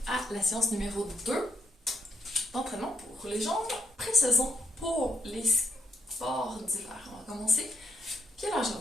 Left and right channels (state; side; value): normal; both; correlation 0.76